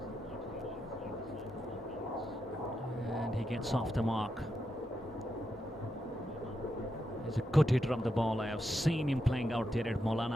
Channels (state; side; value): normal; both; correlation 0.85